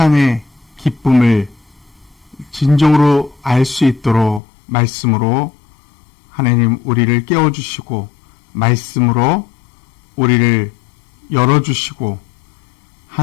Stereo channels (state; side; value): drops out; right; at 4.4 s